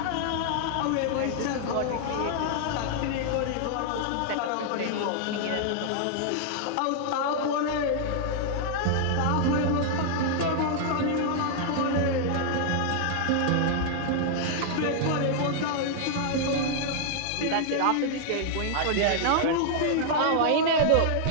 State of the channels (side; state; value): both; different; correlation -0.01